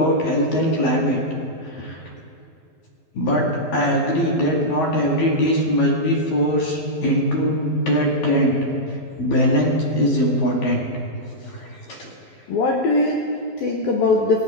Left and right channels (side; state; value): right; late; 12 ms